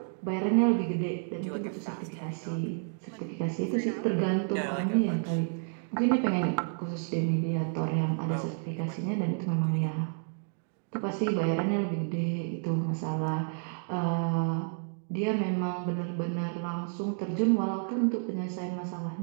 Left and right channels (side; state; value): left; silent; 56 dB below the other